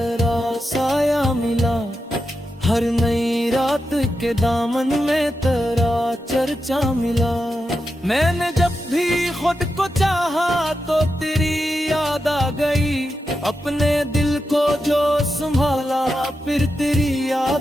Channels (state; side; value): normal; both; correlation 0.88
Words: साया मिला, हर नई रात के दामन में तेरा चर्चा मिला। मैंने जब भी खुद को चाहा तो तेरी याद आ गई, अपने दिल को जो संभाला फिर तेरी